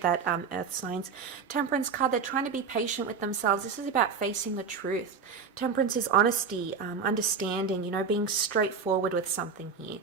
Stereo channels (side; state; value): left; quieter; 5.6 dB